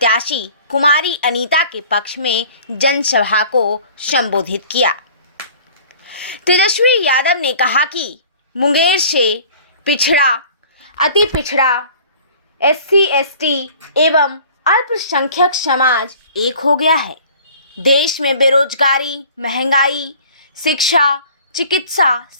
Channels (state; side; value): inverted; both; correlation -0.48